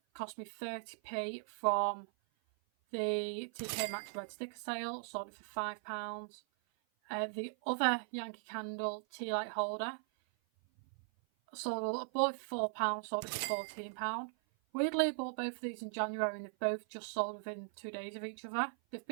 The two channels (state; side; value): silent; left; 52 dB below the other